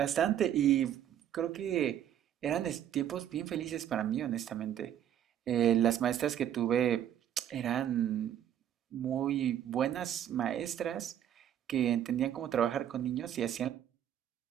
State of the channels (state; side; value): quieter; left; 10.5 dB